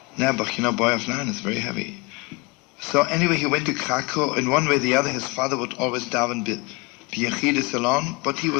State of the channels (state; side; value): quieter; right; 25.6 dB